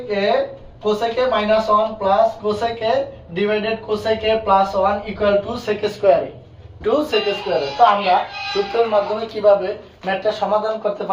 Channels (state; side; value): identical; both; correlation 1.00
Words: A -1 plus cosec A divided cosec A plus 1 equal to sec স্কয়ারে। তো আমরা সূত্রের মাধ্যমে কিভাবে ম্যাথটা সমাধান করতে